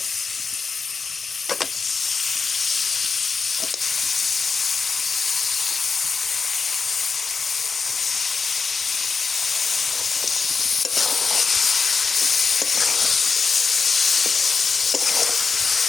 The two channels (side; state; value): right; quieter; 5.0 dB